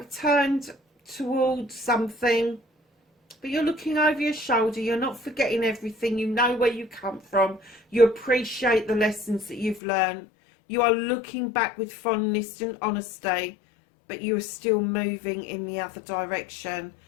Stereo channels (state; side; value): drops out; right; at 9.8 s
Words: turned towards something, but you're looking over your shoulder. You're not forgetting everything. You know where you come from. You appreciate the lessons that you've learned. You are looking back with fondness and honesty, but you are still moving in the other direction.